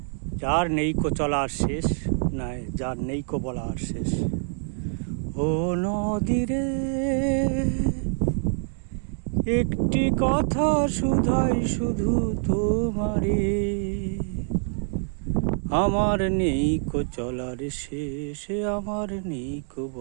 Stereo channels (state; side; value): silent; left; digital silence